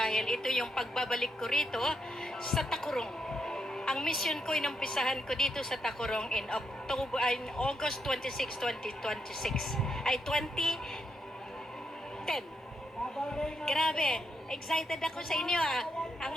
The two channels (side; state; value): both; normal; correlation 0.80